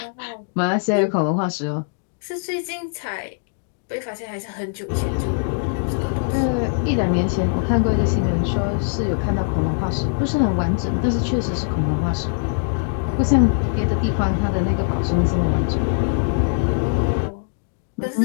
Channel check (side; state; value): right; silent; digital silence